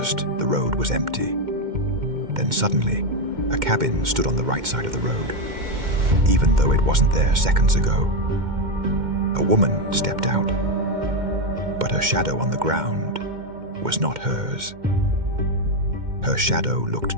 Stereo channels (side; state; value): left; late; 2.1 ms